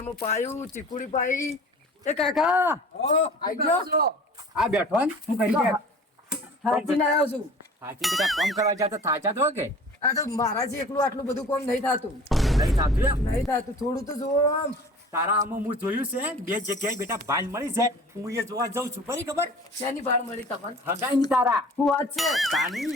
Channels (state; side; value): normal; both; correlation 0.44